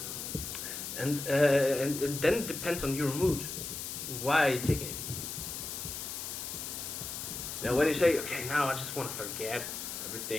And then it depends on your mood. Why are you taking it? Now, when you say, okay, now I just want to forget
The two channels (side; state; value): left; noise; hiss, 6 dB below the sound